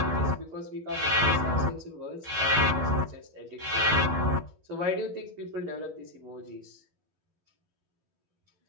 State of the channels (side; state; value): left; late; 12 ms